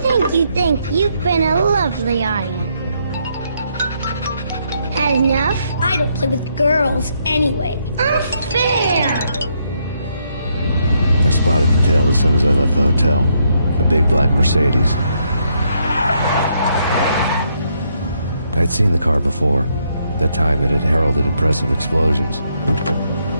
you. You've been a lovely audience. Had enough? I don't play with girls anyway. Unfair! I spotted the tail as soon as I left the hotel. A big black Mercedes. I'd seen the car before. That time it had heralded impressive explosions.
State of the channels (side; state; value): both; inverted; correlation -0.75